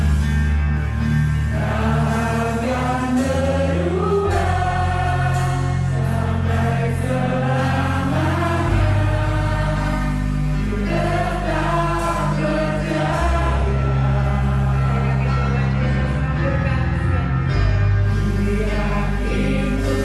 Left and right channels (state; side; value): identical; both; correlation 1.00